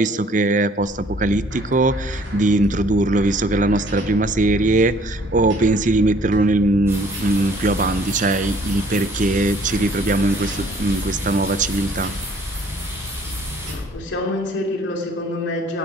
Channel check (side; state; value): both; normal; correlation 0.57